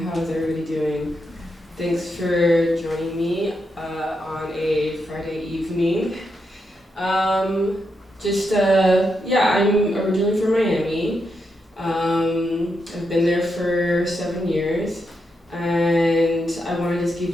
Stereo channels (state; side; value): normal; both; correlation 0.83